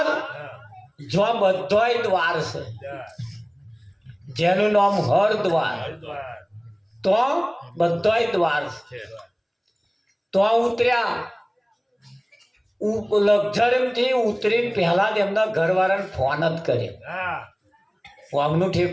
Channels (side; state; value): both; identical; correlation 1.00